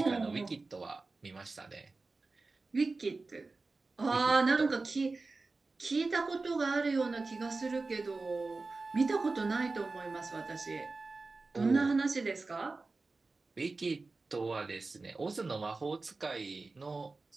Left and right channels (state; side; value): quieter; left; 3.7 dB